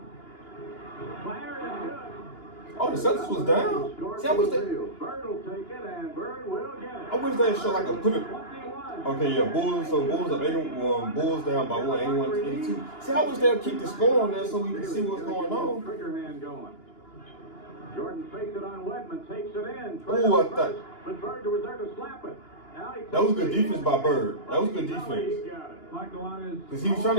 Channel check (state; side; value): late; right; 2.9 ms